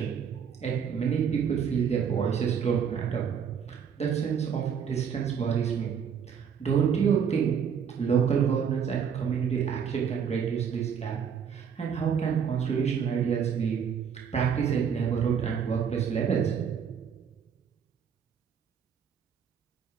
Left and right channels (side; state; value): left; quieter; 7.3 dB